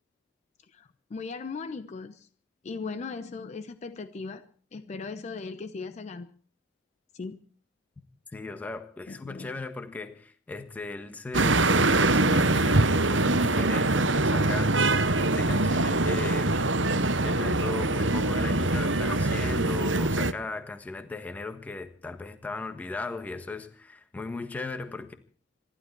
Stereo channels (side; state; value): both; normal; correlation 0.33